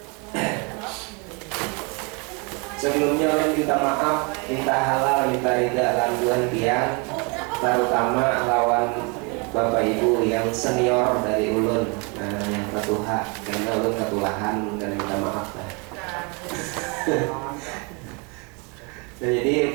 Sebelumnya orang minta maaf, minta halal, minta ridha lanjuan pian, terutama lawan Bapak Ibu yang senior dari ulun, yang ketuha, karena ulun ketulahan dan minta maaf lah. Nah,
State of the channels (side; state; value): left; quieter; 32.0 dB